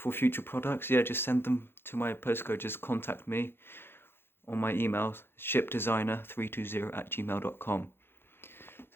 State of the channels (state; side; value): late; right; 0.11 ms